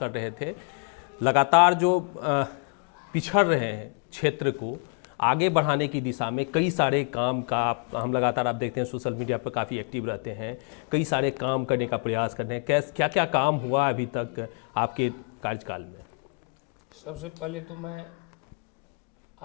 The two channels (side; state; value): right; quieter; 38.3 dB